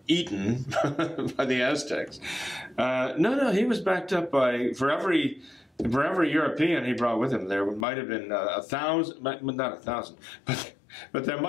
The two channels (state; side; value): drops out; right; at 7.9 s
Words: eaten by the Aztecs. No, he was backed up by, for every European he brought with him, there might have been 1,000, not 1,000, but there